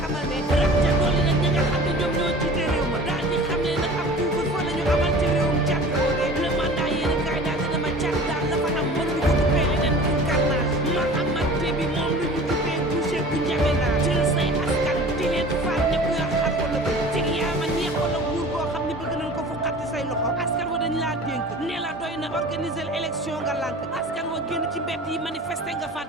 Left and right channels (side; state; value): both; normal; correlation 0.42